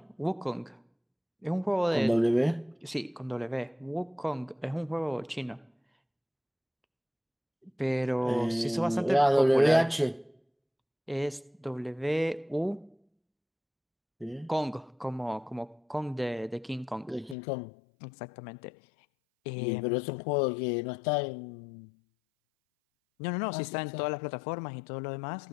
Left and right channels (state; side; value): drops out; right; at 17.4 s